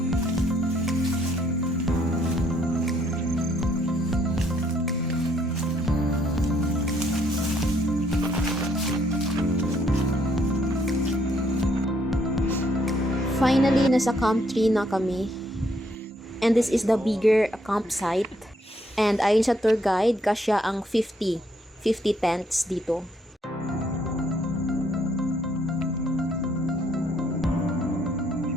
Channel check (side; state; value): both; normal; correlation 0.69